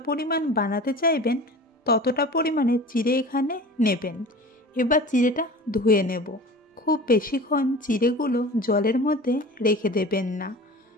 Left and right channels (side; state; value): both; normal; correlation 0.38